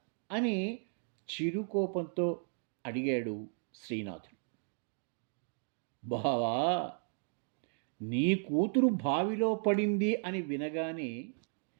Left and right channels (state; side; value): silent; left; 54 dB below the other